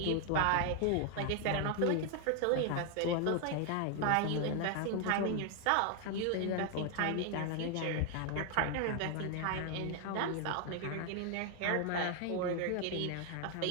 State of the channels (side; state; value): both; different; correlation 0.00